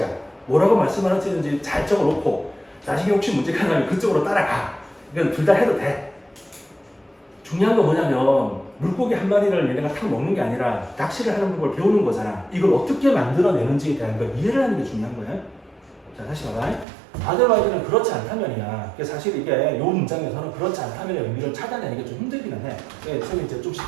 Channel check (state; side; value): drops out; left; at 16.9 s